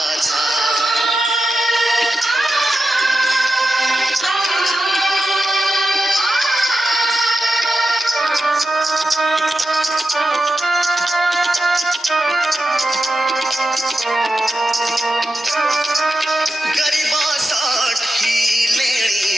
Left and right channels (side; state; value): both; normal; correlation 0.90